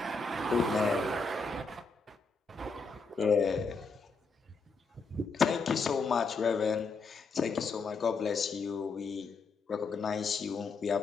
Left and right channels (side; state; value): right; quieter; 4.3 dB